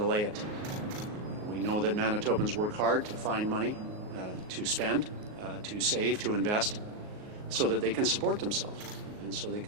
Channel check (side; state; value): left; late; 38 ms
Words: it. We know that Manitobans work hard to find money, to spend, to save, to invest, so that they can support themselves and so they